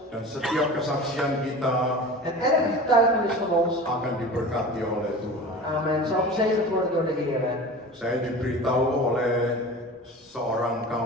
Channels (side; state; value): both; normal; correlation 0.35